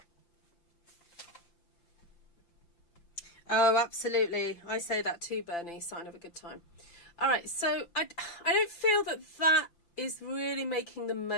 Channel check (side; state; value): right; late; 5.8 ms